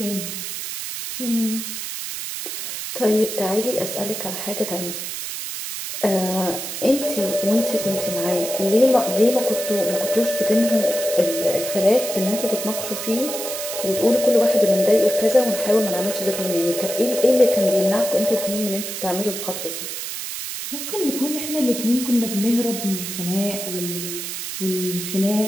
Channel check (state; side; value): noise; right; hiss, 6 dB below the sound